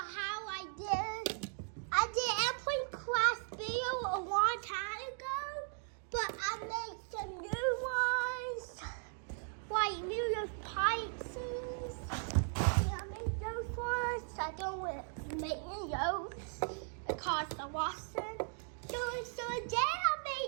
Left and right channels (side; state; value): left; silent; 53 dB below the other